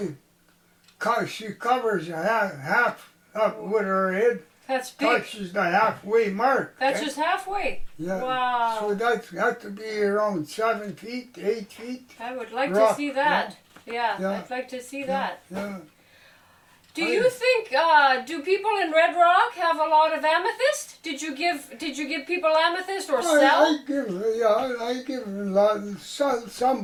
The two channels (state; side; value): identical; both; correlation 1.00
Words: she covers half up with her head. That's big. Touches the halfway mark. That's eh? just halfway. Yeah. Wow. So that had to be around 7 feet, 8 feet. I would like rock, to see that. Yeah, Yeah. I'd like to see that. Yeah. Do you think do people in Red Rock have a lot of amethyst? Did you give people amethyst or sell? I give a lot. Some